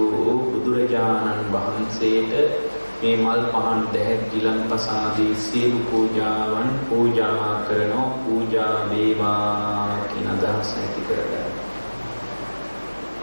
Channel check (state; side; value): inverted; both; correlation -1.00